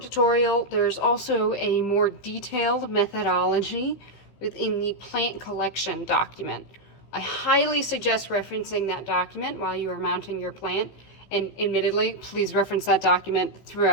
tutorial, there's also a more detailed methodology within the plant collection document. I highly suggest referencing that document while you are mounting your plant, and admittedly, please reference that document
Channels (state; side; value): late; right; 16 ms